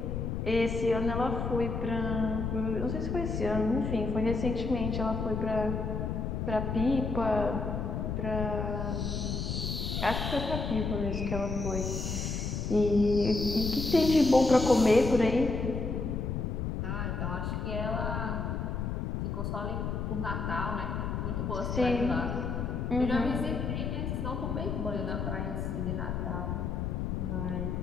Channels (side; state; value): left; noise; rumble, 2 dB below the sound